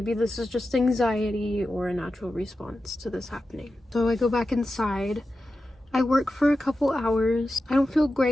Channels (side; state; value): both; normal; correlation 0.92